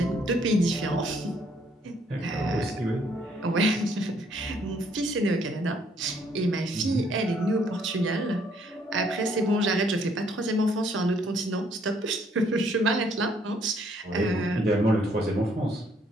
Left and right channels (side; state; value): both; normal; correlation 0.66